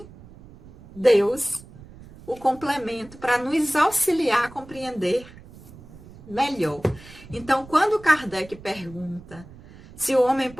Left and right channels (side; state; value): right; noise; rumble, 20 dB below the sound